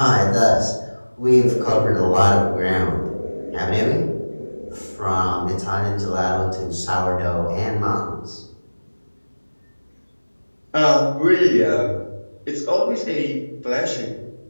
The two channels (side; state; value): both; inverted; correlation -1.00